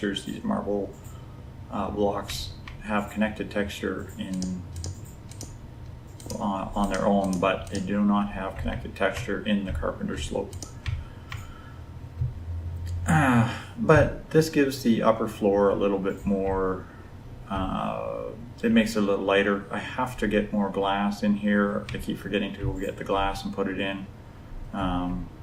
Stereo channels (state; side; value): identical; both; correlation 1.00